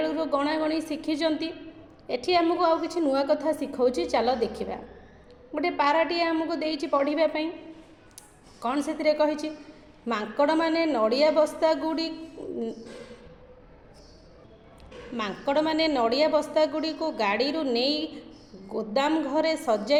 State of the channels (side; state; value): both; identical; correlation 1.00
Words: गणागणी शिखिंट एठी आमको आउ किछि नुआ कथा शिखाऊँ। चलो देखा गोटे पाराटिए आमको देइछि पढ़ाई कौन से कही मांकड़ माने नड़िया बस्ता गुड़ी को गाड़ी रू नहीं गोदाम घरे